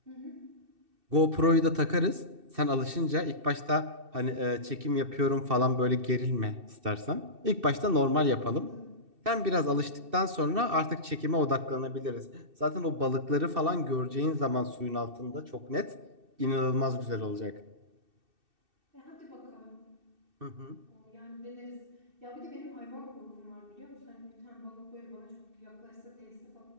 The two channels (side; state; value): left; late; 2.6 ms